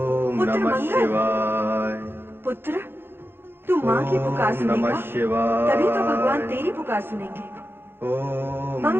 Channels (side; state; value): left; late; 0.10 ms